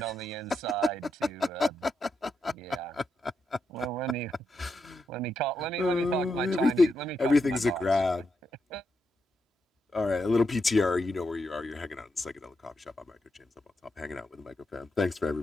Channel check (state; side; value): normal; both; correlation 0.83